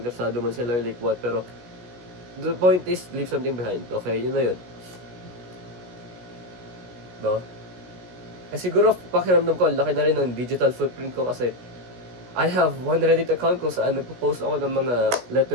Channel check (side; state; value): left; late; 16 ms